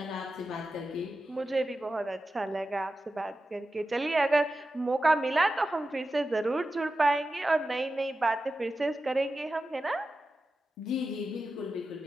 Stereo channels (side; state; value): both; normal; correlation 0.92